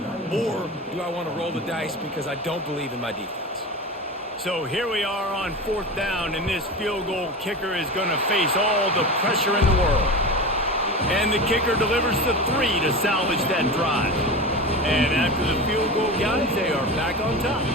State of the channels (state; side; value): normal; both; correlation 0.27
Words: Or do I want to roll the dice because I don't believe in my defense? So here we are on 4th down, and this field goal kicker is going to face all the pressure in the world. And the kicker delivers the 3 to salvage that drive. And after the field goal, guys, they are back on